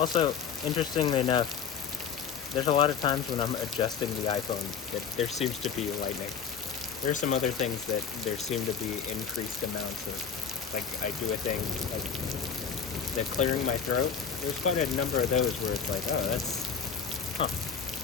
interestingly enough, there's a lot of times when I'm adjusting the iPhone that there seems to be lightning. There are some other things that there seem to be increased amounts of, like I do a thing, like the clearing my throat. There's quite a number of those where it's like, oh, that's,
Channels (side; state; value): right; quieter; 6.9 dB